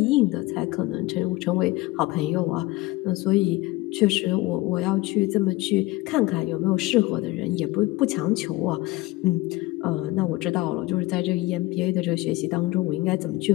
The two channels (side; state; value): right; quieter; 19.8 dB